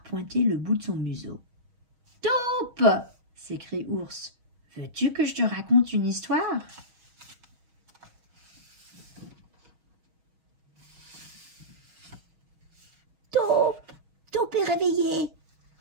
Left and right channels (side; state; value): left; late; 6.3 ms